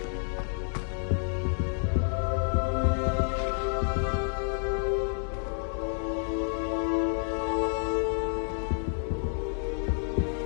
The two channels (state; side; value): silent; right; digital silence